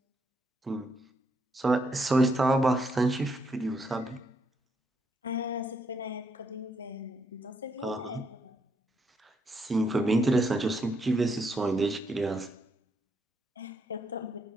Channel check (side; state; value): both; normal; correlation 0.76